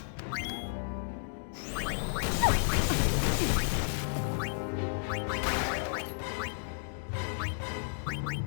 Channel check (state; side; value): silent; right; digital silence